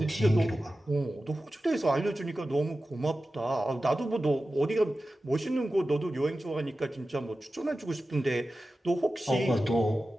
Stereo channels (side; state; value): both; normal; correlation 0.94